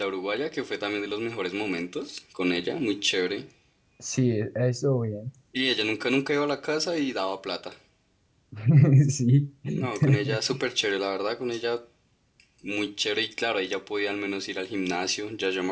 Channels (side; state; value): both; identical; correlation 1.00